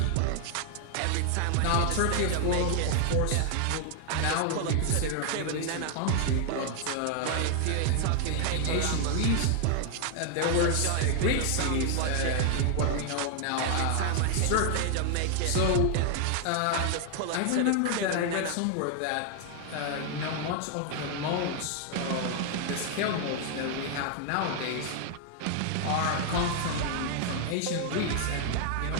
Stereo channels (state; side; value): different; both; correlation 0.00